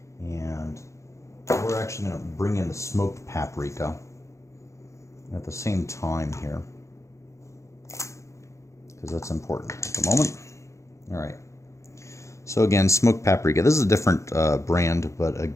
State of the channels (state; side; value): late; right; 0.14 ms